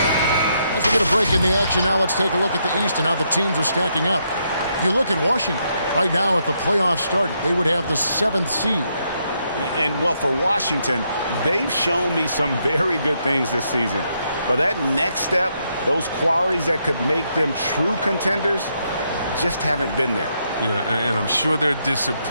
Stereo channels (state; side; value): inverted; both; correlation -0.77